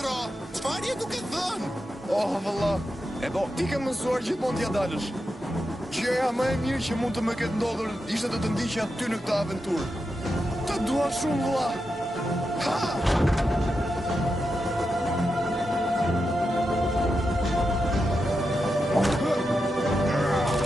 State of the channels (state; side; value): normal; both; correlation 0.88